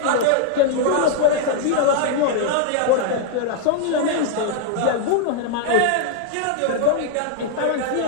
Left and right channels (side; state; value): both; different; correlation -0.01